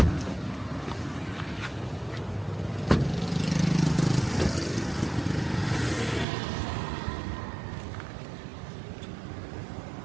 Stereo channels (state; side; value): drops out; left; at 6.2 s